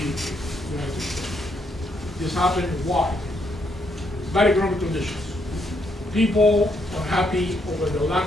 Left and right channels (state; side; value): normal; both; correlation 0.75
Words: States. This happened why? Bad economic conditions. People unhappy over the